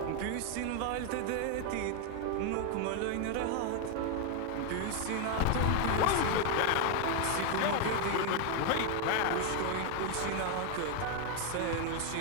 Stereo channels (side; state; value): both; different; correlation 0.01